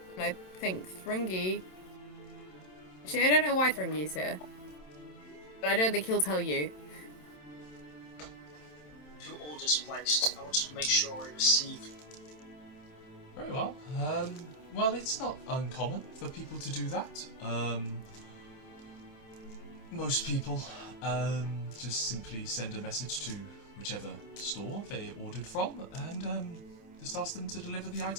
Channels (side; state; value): right; late; 27 ms